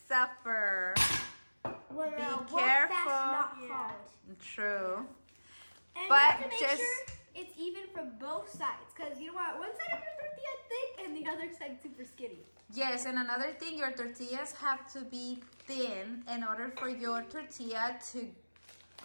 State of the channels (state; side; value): inverted; both; correlation -1.00